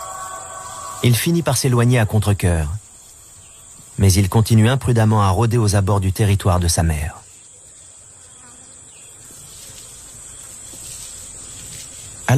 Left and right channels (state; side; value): identical; both; correlation 1.00